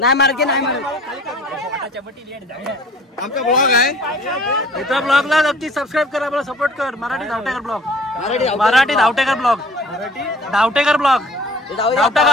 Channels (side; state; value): both; normal; correlation 0.49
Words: मारके नाही मारू आमचा ब्लॉग आहे इथं ब्लॉगला नक्की सबस्क्राईब कर आपला सपोर्ट कर Marathi Dhavtekar blog Marathi Dhavtekar blog Dhavtekar blog